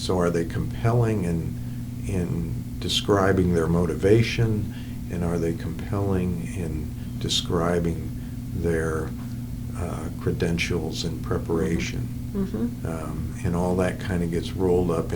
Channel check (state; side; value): identical; both; correlation 1.00